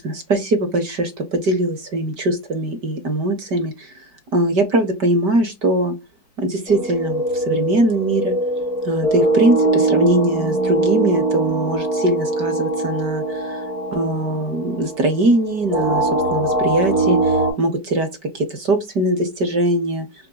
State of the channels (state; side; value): late; left; 5.1 ms